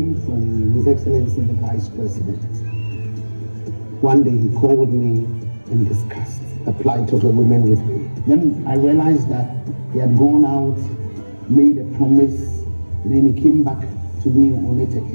from His Excellency the Vice President. One day he called me and discussed the plight of the women with me. Then I realized that he had gone out, made a promise, and then he came back to me on it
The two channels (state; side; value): inverted; both; correlation -1.00